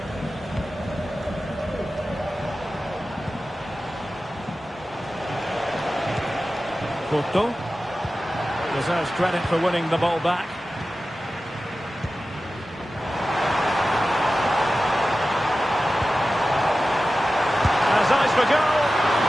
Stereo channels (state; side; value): normal; both; correlation 0.94